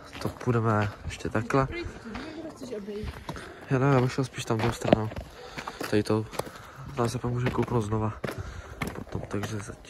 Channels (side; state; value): both; identical; correlation 1.00